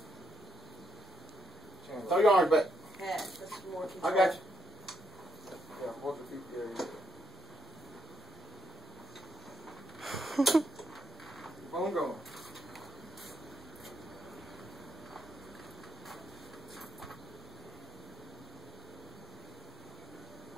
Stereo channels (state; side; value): normal; both; correlation 0.77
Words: Throw your arms back. Yeah, that's more I control. got you. Yeah, walk your feet there. Keep on going.